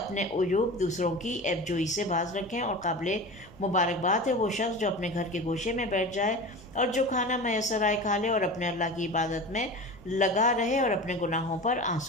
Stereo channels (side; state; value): left; noise; hum, 28 dB below the sound